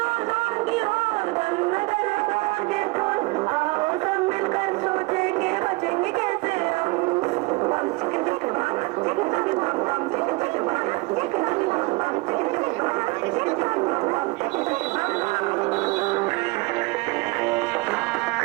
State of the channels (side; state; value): left; quieter; 24.8 dB